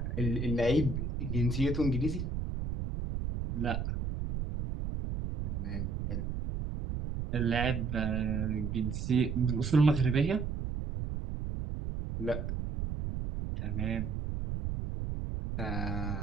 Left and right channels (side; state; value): right; noise; rumble, 3 dB below the sound